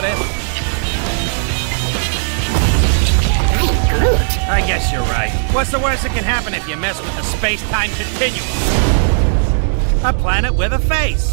this? I guess you're right. What's the worst that can happen if you mess with the space-time continuum? A planet with a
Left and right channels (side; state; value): left; silent; digital silence